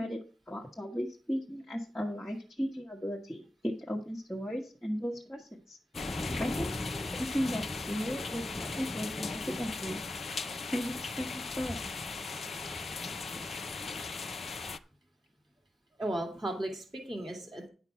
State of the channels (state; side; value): normal; both; correlation 0.90